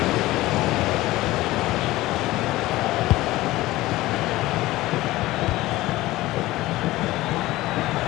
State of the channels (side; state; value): right; quieter; 17.7 dB